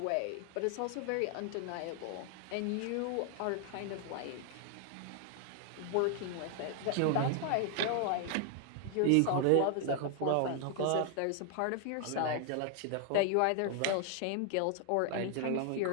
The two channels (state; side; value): different; both; correlation 0.00